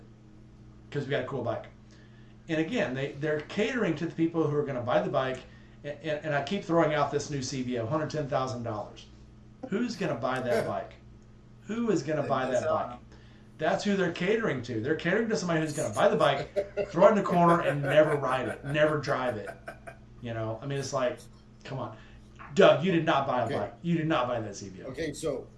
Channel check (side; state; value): both; identical; correlation 1.00